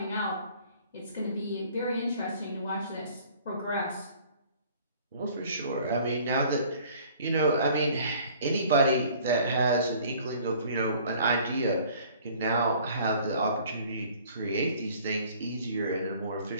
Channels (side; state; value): both; inverted; correlation -0.53